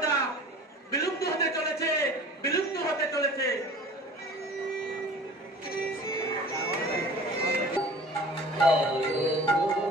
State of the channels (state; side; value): normal; both; correlation 0.43